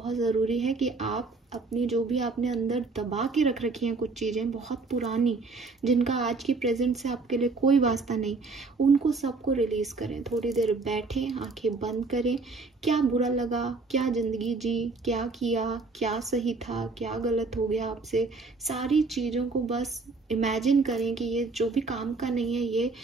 ज़रूरी है कि आप अपनी जो भी आपने अंदर दबा के रख रखी हैं कुछ चीज़ें बहुत पुरानी, जिनका आज की प्रेजेंट से आपके लिए कोई वास्ता नहीं, उनको सबको रिलीज करें। थोड़ी देर बैठें, आंखें बंद करें, क्या बुरा लगा, क्या ज़िंदगी जी, क्या किया, क्या सही था, क्या गलत हो गया आपसे, सारी चीज़ों को बस इमेजिन करें कि ये जो भी काम का नहीं है, ये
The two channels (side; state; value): left; quieter; 3.9 dB